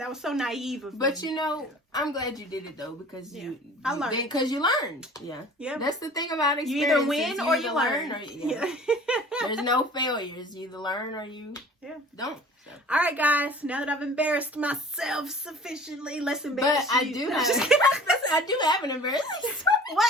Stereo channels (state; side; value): normal; both; correlation 0.45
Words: was so naive of me. But I'm glad you did it though, because I learned. Because you learned. Yeah. That's the thing about experience. You either win or you learn. There's no failures. You either learn or you don't. So. All right, guys. Now that I've embarrassed myself sufficiently, let's embarrass you. I do have an embarrassing story.